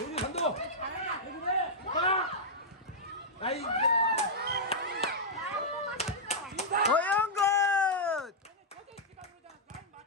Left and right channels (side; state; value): both; normal; correlation -0.07